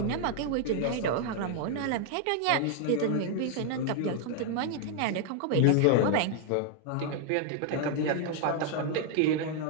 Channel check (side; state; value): both; different; correlation 0.00